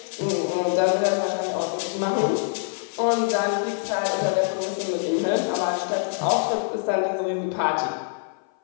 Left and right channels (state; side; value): silent; right; 56 dB below the other